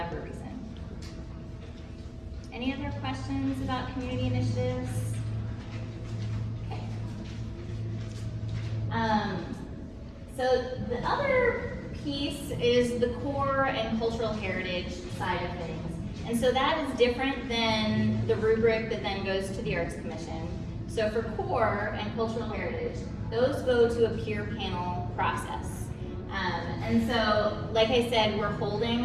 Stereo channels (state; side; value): identical; both; correlation 1.00